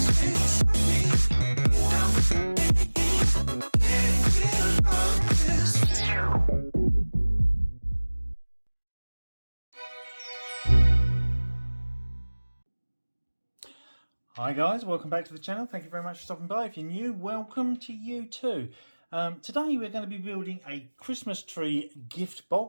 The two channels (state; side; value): inverted; both; correlation -1.00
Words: guys, welcome back to the channel. Thank you very much for stopping by. If you're new, welcome to you too. Today we're going to be building a Christmas tree gift